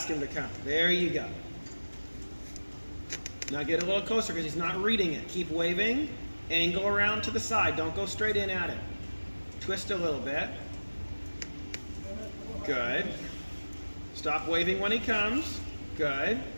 him to come? There you go. Now get a little closer because he's not reading it. Keep waving. Angle around to the side. Don't go straight in at him. Twist a little bit. Good. Stop waving when he comes. Good.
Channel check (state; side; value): inverted; both; correlation -1.00